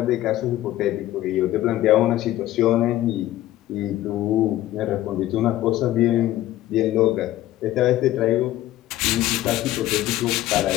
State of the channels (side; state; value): right; quieter; 14.6 dB